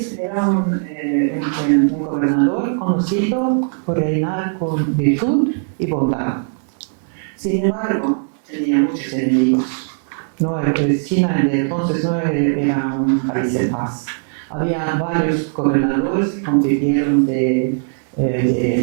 un gobernador conocido por reinar con virtud y bondad. Sin embargo, tenía muchos enemigos. No, China de entonces no era un país en paz. Había varios gobernadores que compitieron del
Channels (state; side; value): silent; left; 67 dB below the other